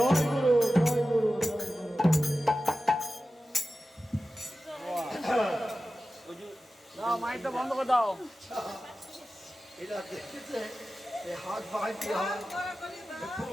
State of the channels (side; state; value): both; normal; correlation 0.94